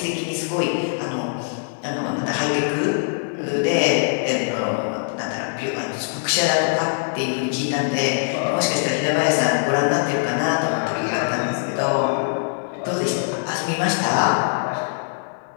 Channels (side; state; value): right; silent; digital silence